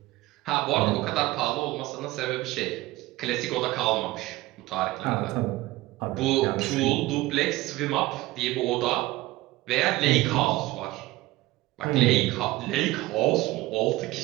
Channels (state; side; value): quieter; left; 18.5 dB